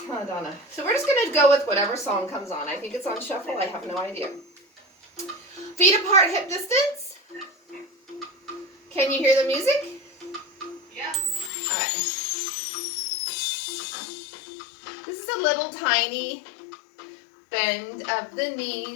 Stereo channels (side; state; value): right; drops out; at 11.5 s